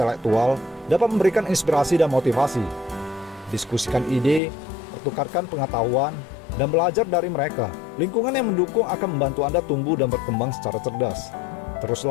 dapat memberikan inspirasi dan motivasi. Diskusikan ide, pertukarkan pengetahuan, dan belajar dari mereka. Lingkungan yang mendukung akan membantu Anda tumbuh dan berkembang secara cerdas.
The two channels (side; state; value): right; drops out; at 4.4 s